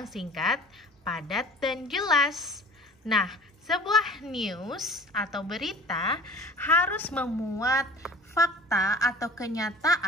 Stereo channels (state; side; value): normal; both; correlation 0.44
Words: singkat, padat, dan jelas. Nah, sebuah news atau berita harus memuat fakta atau